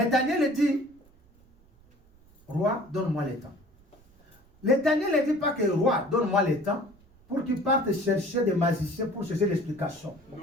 Daniel dit, roi, donne-moi le temps. Le Daniel ne dit pas que roi, donne-moi le temps pour qu'il parte chercher des magiciens pour chercher l'explication.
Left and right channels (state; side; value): noise; right; rumble, 29 dB below the sound